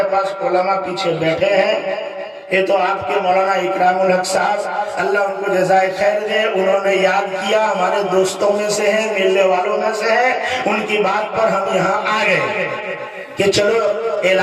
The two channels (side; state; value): both; identical; correlation 1.00